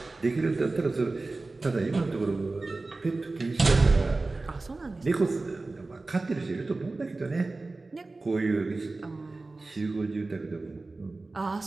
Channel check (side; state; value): left; quieter; 3.4 dB